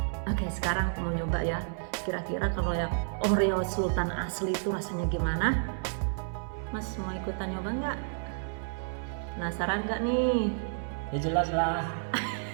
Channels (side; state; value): left; silent; 57 dB below the other